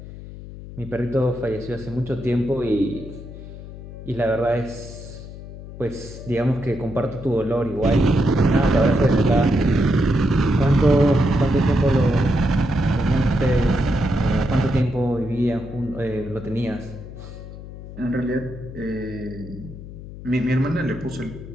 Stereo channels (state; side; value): noise; left; hum, 13 dB below the sound